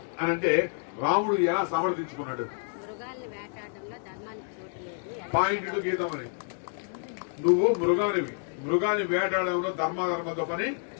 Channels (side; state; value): right; silent; 59 dB below the other